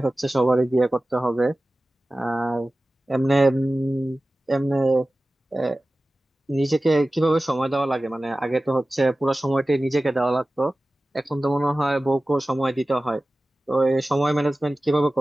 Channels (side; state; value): both; normal; correlation 0.96